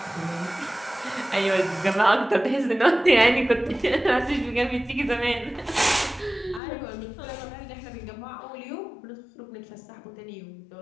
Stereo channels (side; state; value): right; drops out; at 6.6 s